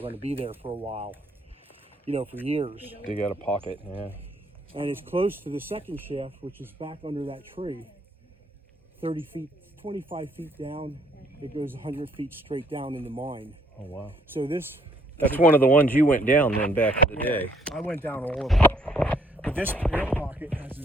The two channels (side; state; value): both; normal; correlation 0.66